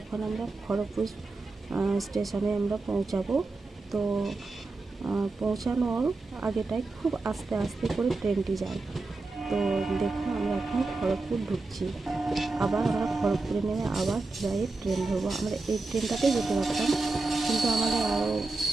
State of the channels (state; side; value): quieter; left; 3.5 dB